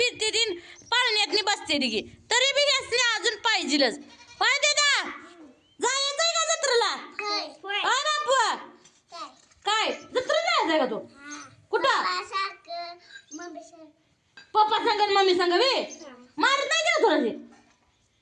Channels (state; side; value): identical; both; correlation 1.00